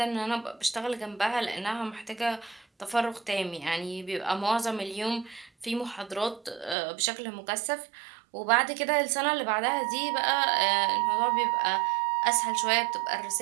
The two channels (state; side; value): drops out; left; at 6.8 s